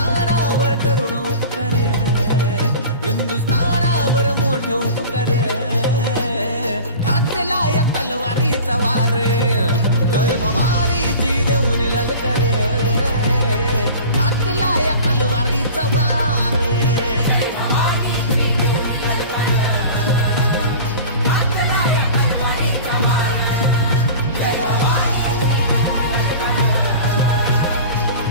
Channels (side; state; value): both; inverted; correlation -0.37